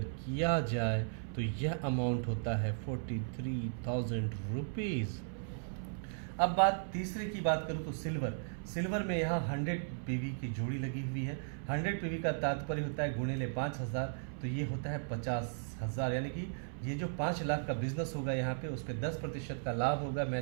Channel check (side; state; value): left; silent; 54 dB below the other